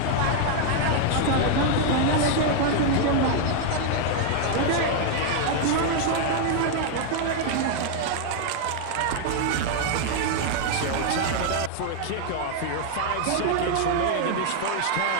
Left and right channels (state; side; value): different; both; correlation 0.00